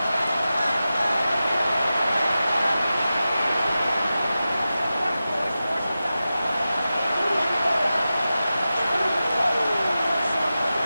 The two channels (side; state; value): both; inverted; correlation -0.93